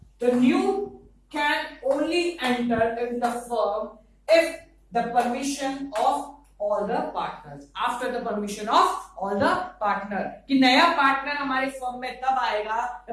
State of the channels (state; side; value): identical; both; correlation 1.00